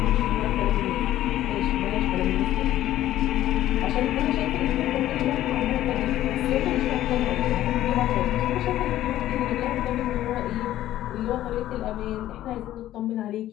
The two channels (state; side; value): quieter; right; 13.5 dB